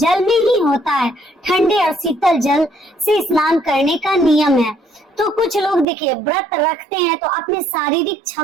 में ही होता है। ठंडे और शीतल जल से स्नान करने का नियम है। तो कुछ लोग देखिए व्रत रखते हैं तो अपने शारीरिक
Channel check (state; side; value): drops out; left; at 5.9 s